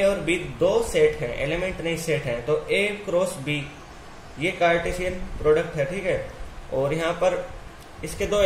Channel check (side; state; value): both; identical; correlation 1.00